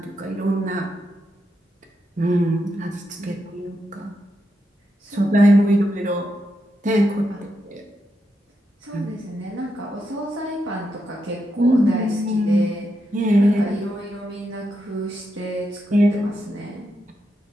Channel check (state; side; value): normal; both; correlation 0.84